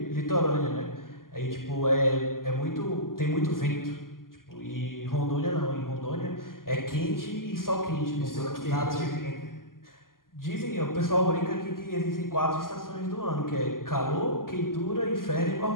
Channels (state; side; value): late; right; 0.91 ms